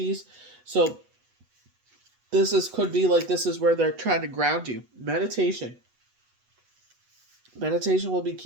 So, could be like, this is where they're trying to ground you. Meditation will be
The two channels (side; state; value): left; late; 8.1 ms